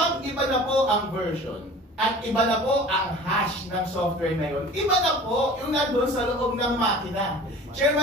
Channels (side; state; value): both; normal; correlation 0.42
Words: iba na po ang version at iba na po ang hash ng software na yun, iba na po yung nandun sa loob ng makina.